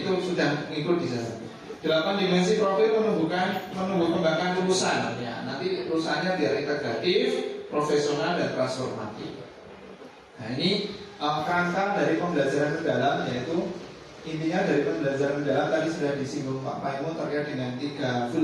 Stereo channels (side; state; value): both; identical; correlation 1.00